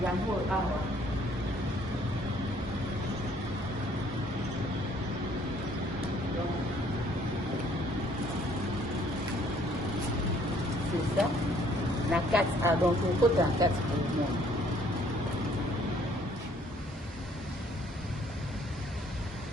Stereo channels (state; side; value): normal; both; correlation 0.61